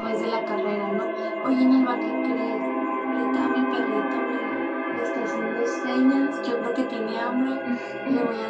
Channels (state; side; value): identical; both; correlation 1.00